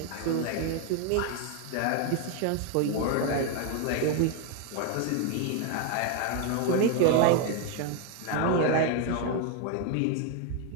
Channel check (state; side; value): different; both; correlation 0.01